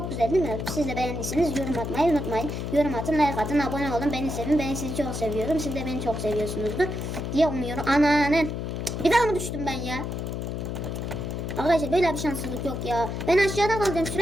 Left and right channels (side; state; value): left; noise; hum, 4 dB below the sound